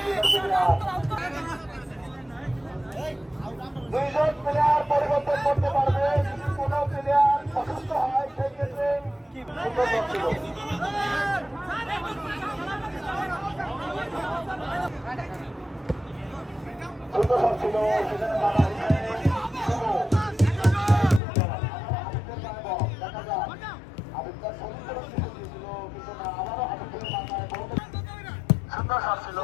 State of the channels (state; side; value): drops out; right; at 21.2 s